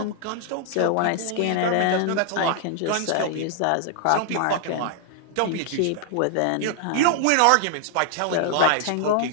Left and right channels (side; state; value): both; different; correlation 0.00